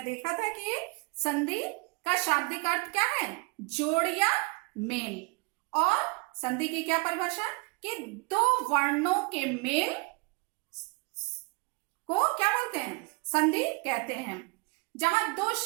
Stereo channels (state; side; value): quieter; left; 29.3 dB